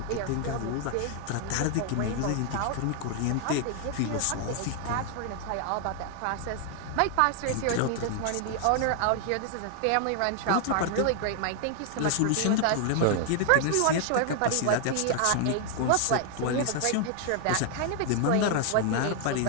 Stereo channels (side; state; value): both; different; correlation 0.00